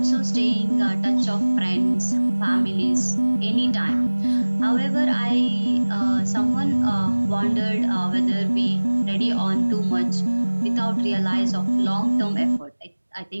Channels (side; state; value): both; inverted; correlation -1.00